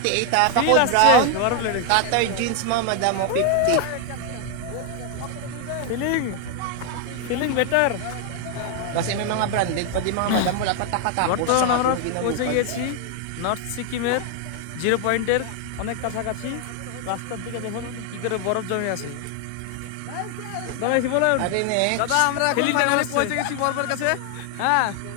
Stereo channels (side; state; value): both; different; correlation 0.00